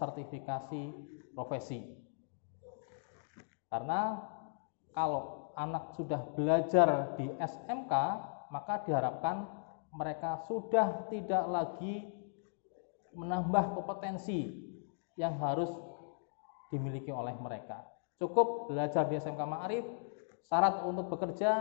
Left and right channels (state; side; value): silent; right; digital silence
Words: Profesi. Karena kalau anak sudah belajar di SMK, maka diharapkan mereka sudah tidak lagi menambah kompetensi yang harus dimiliki oleh mereka. Cukup belajar di SMK Ma'arif, syarat untuk